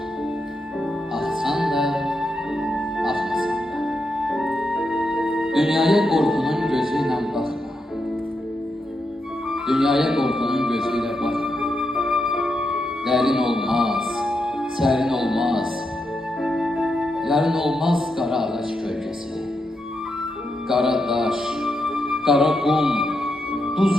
Axsan da, axmasan da. Dünyaya qorxunun gözüyle baxma. Dünyaya qorxunun gözüyle baxma. Dərin olmaz, sərin olmaz. Yarın olmaz qara ağac kölgəsi. Qara daş, qara qum, duz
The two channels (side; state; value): both; normal; correlation 0.84